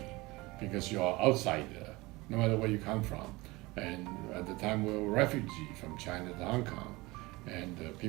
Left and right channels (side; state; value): left; quieter; 22.1 dB